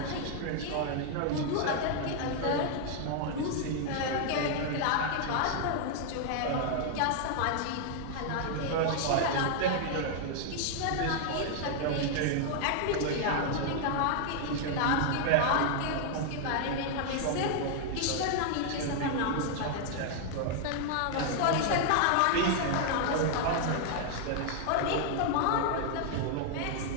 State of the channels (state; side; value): different; both; correlation 0.00